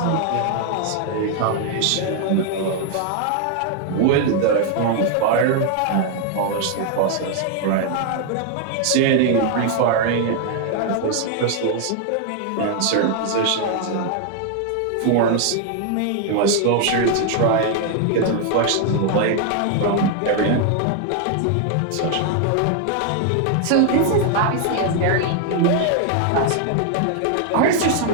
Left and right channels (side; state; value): both; different; correlation 0.00